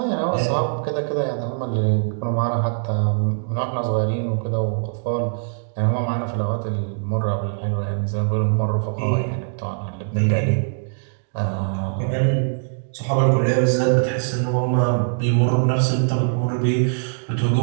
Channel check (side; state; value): left; silent; digital silence